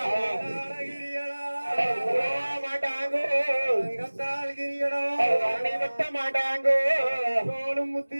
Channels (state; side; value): inverted; both; correlation -1.00